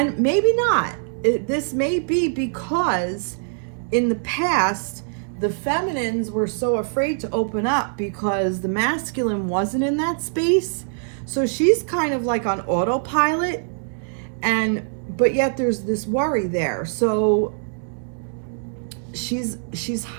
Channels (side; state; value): left; silent; digital silence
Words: maybe not. This may be because in the past, the feminines were so afraid to open up because the masculine wasn't in that space. So she's kind of like on autopilot, but yet there's this worry there. So she's